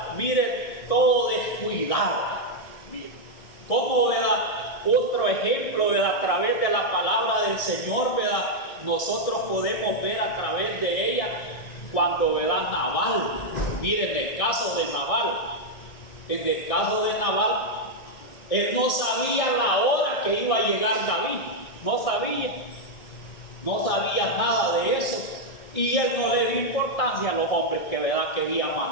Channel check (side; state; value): right; late; 1.6 ms